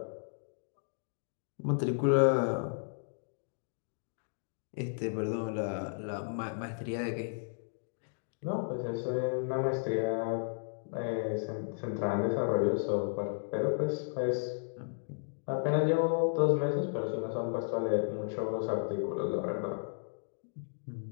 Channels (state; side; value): silent; right; digital silence